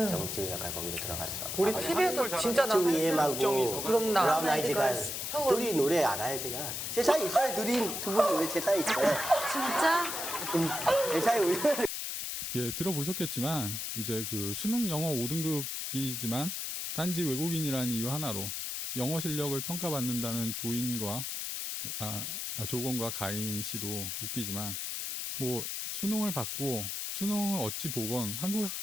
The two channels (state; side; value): noise; left; hiss, 4 dB below the sound